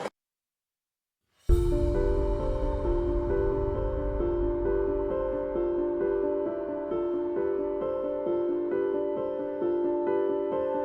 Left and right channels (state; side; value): identical; both; correlation 1.00